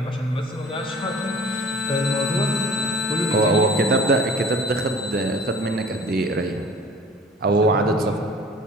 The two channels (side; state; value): both; normal; correlation 0.47